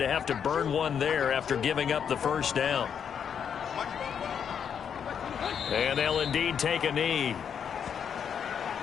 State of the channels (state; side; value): quieter; right; 7.7 dB